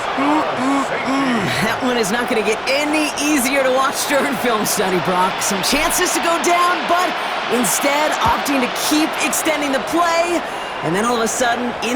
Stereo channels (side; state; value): both; identical; correlation 1.00